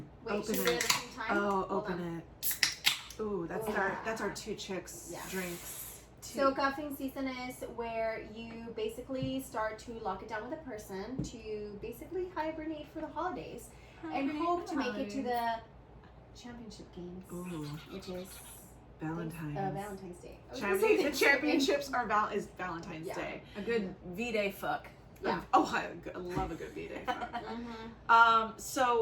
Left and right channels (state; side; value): identical; both; correlation 1.00